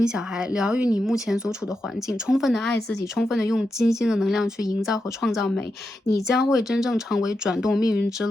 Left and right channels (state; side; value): normal; both; correlation 0.87